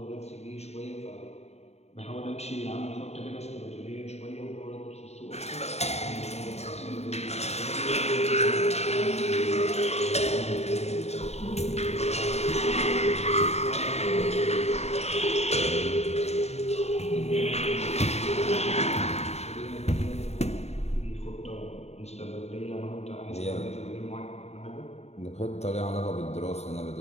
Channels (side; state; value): right; late; 0.31 ms